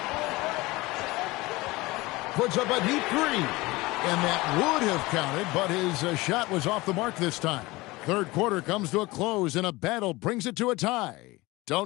Puts up a deep 3. And that would have counted, but his shot was off the mark this time. Third quarter comes to a close, and a battle brings it to a tie.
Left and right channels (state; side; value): quieter; right; 21.3 dB